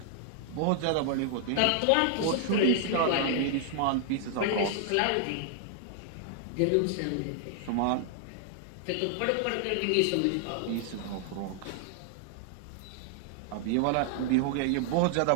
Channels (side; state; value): both; different; correlation 0.00